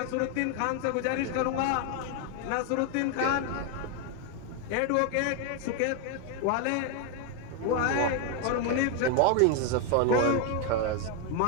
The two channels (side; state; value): both; different; correlation 0.01